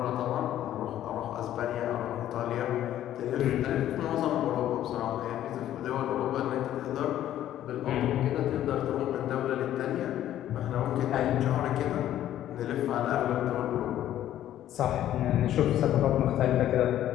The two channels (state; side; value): quieter; right; 12.2 dB